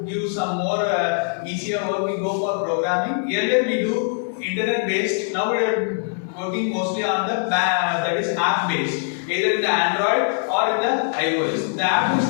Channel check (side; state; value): right; silent; 62 dB below the other